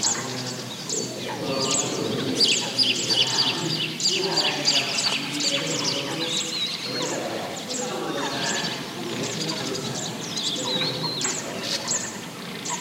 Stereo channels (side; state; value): both; identical; correlation 1.00